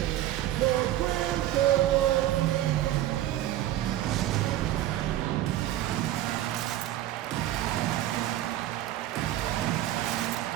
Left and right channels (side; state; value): left; quieter; 13.7 dB